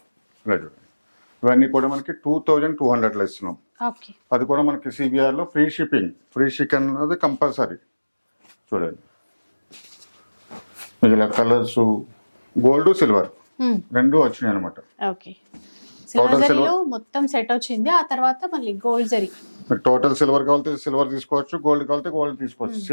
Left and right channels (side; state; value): both; inverted; correlation -1.00